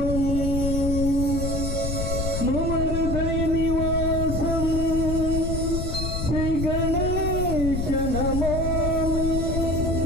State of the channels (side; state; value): left; noise; rumble, 2 dB below the sound